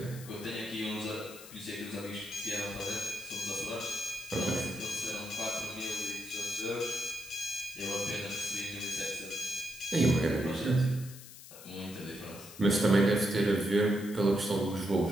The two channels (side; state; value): left; noise; hiss, 16 dB below the sound